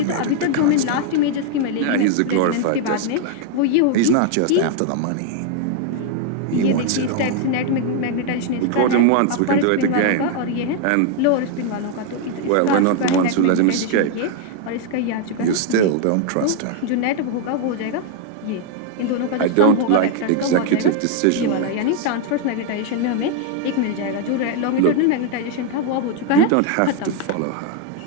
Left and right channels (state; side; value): different; both; correlation 0.00